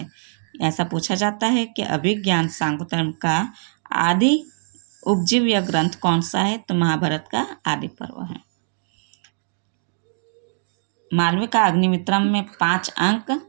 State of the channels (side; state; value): left; silent; digital silence